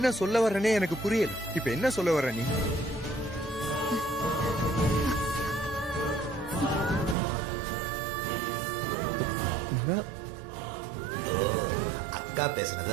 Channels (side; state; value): left; drops out; at 7.2 s